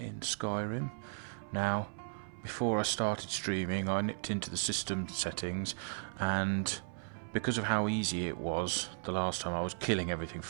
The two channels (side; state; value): left; silent; 54 dB below the other